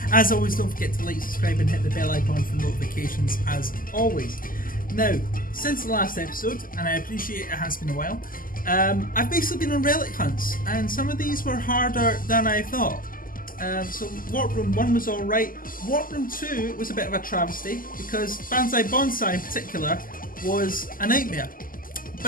As always, don't forget to like, subscribe and hit the bell icon for notifications as always. Now, since the last episode, and I appreciate it has been a while, I've basically been on relic hunts, and some of these were harder than I thought. So Warp Room 1 was alright. Warp Room 2 was a bit of a travesty because Banzai Bonsai in particular was a nightmare.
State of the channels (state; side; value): late; right; 0.41 ms